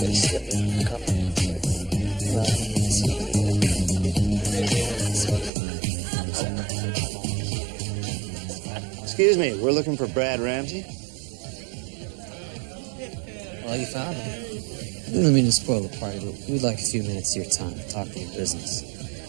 Excuse me, we're looking for Brad Ramsey. Well, you found him. I don't mean to spoil the party, but we'd like a few minutes of your time to talk to your business.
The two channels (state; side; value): drops out; left; at 5.5 s